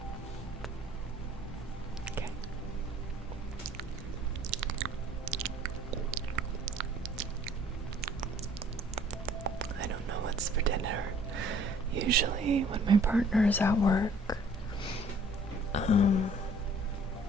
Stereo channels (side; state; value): both; normal; correlation 0.55